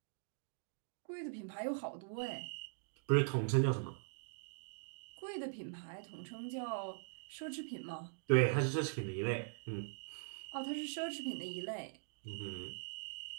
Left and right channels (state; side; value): silent; left; digital silence